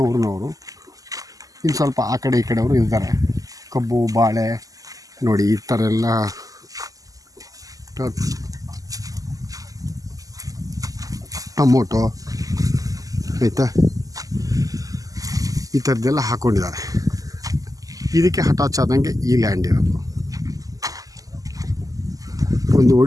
ಊರಿನವರು. ಇನ್ನು ಸ್ವಲ್ಪ ಆ ಕಡೆ ಈ ಕಡೆಯವರು ಇದ್ದಾರೆ. ಕಬ್ಬು, ಬಾಳೆ ನೋಡಿ ಈ ಥರ ಎಲ್ಲ ಟೊಮೊಟೊ ಆಯಿತಾ, ಈ ಥರದ್ದೆಲ್ಲ ಹಾಕ್ಕೊಂಡಿದ್ದಾರೆ. ಇದಕ್ಕೆ ಅಟ್ಯಾಚ್ ಆದಂಗೆ ಈ ಲ್ಯಾಂಡ್ ಇರೋದು. ಒಂದು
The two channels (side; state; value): left; late; 0.17 ms